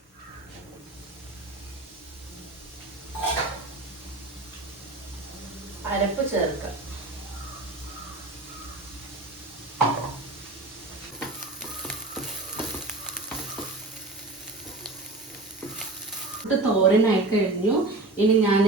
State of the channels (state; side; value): quieter; left; 3.0 dB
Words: അരപ്പ് ചേർക്കാം. തോരനായി കഴിഞ്ഞു. ഇനി ഞാൻ